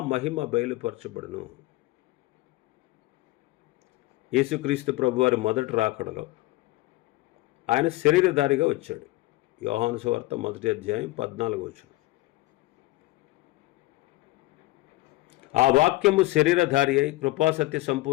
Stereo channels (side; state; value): right; quieter; 19.5 dB